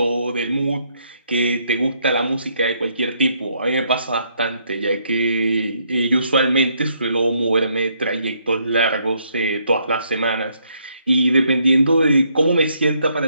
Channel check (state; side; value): inverted; both; correlation -0.72